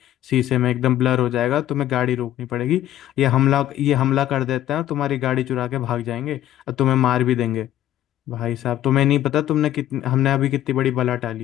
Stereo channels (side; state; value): right; quieter; 12.7 dB